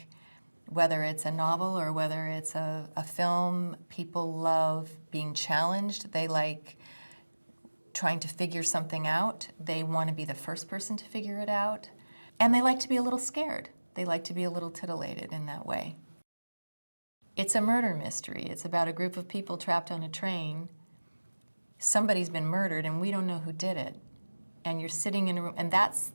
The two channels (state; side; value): inverted; both; correlation -1.00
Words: whether it's a novel or whether it's a film, people love being challenged. They like trying to figure something out. They want to be the first person to figure it out. And they like to be a little scared. They like to be a little titillated in that way. It's a murder mystery. It's about a group of people trapped on a train. Somebody's been murdered and we don't know who did it. And you're sitting in a room, and that's